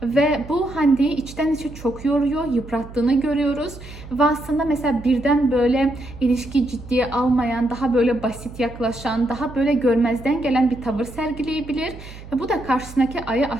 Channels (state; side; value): noise; right; hum, 15 dB below the sound